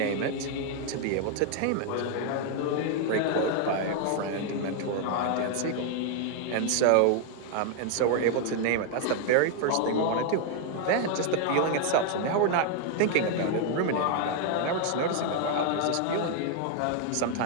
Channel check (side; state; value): both; different; correlation 0.00